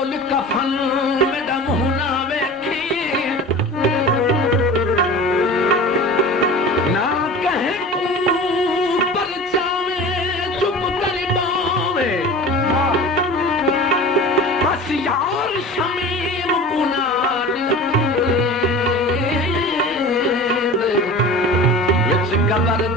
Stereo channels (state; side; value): normal; both; correlation 0.36